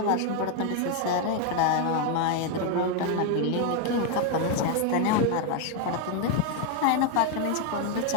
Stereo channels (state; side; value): different; both; correlation 0.01